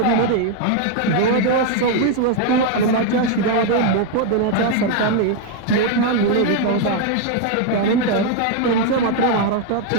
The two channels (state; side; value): different; both; correlation 0.01